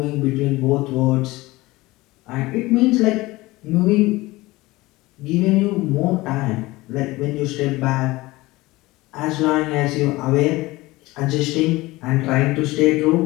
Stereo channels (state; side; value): quieter; right; 20.1 dB